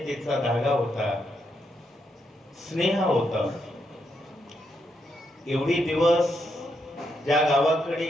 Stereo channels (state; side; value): normal; both; correlation 0.80